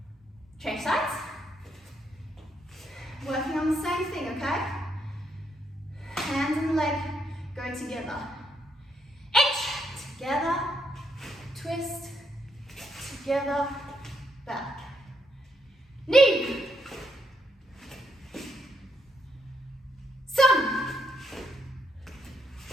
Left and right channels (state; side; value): normal; both; correlation 0.76